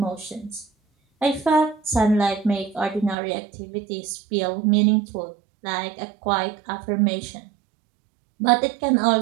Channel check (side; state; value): left; drops out; at 3.2 s